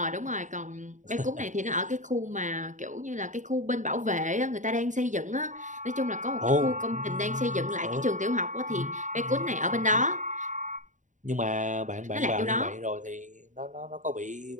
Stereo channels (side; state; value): left; late; 0.36 ms